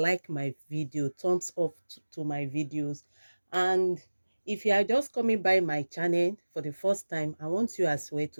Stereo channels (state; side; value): inverted; both; correlation -1.00